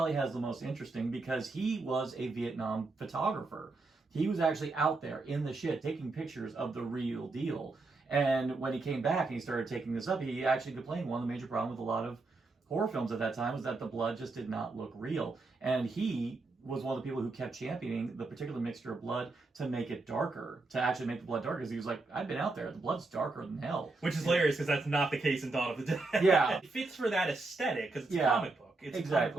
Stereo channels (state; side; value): quieter; left; 3.5 dB